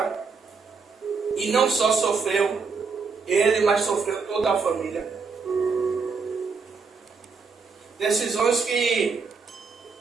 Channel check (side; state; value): left; quieter; 5.0 dB